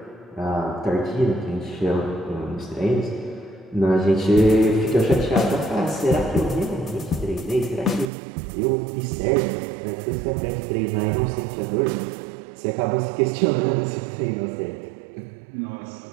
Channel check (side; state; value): left; drops out; at 8.1 s